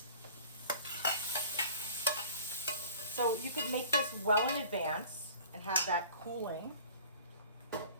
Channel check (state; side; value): inverted; both; correlation -0.46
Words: So you could make this well in advance and have that cooling.